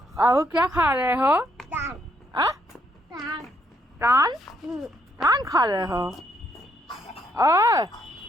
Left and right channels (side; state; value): both; normal; correlation 0.73